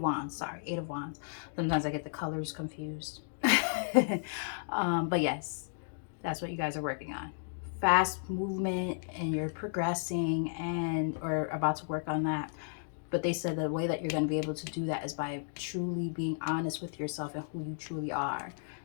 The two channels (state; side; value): silent; right; digital silence